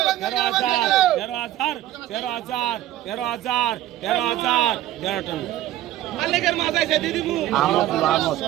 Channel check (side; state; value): left; quieter; 13.6 dB